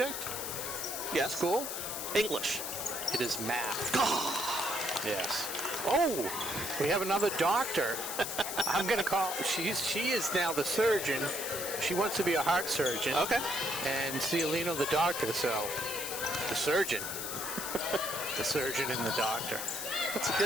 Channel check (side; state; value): left; noise; hiss, 5 dB below the sound